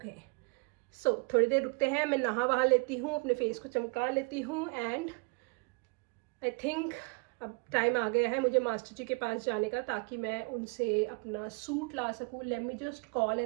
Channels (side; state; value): left; quieter; 32.5 dB